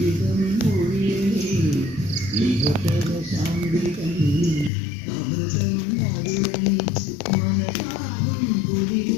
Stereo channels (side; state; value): right; drops out; at 4.7 s